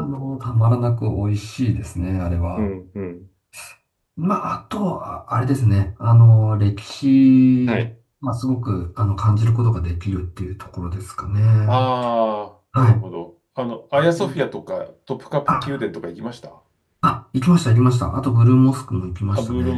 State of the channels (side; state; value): both; identical; correlation 1.00